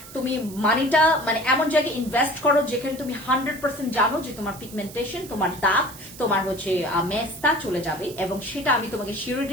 তুমি মানিটা মানে এমন জায়গায় ইনভেস্ট করো যেখানে তুমি 100% জানো যে তোমার পিগমেন্টেশন, তোমার দাগ, তোমার হচ্ছে মেস্তা চলে যাবে, এবং সেটা আমি তোমাকে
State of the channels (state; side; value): noise; right; hiss, 16 dB below the sound